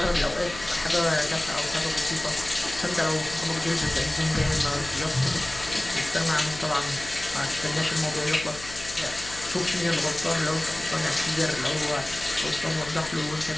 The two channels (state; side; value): noise; left; hum, 15 dB below the sound